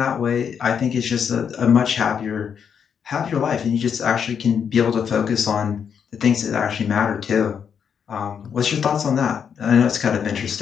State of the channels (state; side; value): quieter; right; 7.4 dB